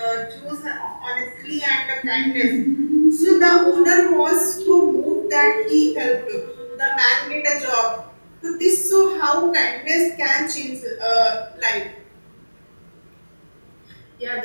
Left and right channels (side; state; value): both; inverted; correlation -1.00